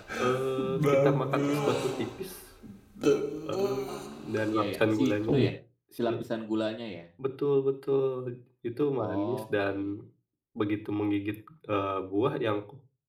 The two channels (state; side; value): identical; both; correlation 1.00